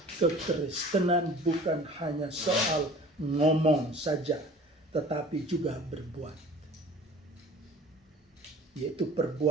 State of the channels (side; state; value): both; normal; correlation 0.46